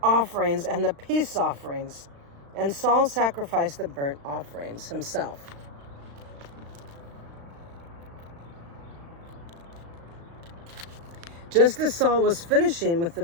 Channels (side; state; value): left; late; 35 ms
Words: offerings and the peace offerings." And Saul sacrificed the burnt offerings himself. Just as Saul was finishing with the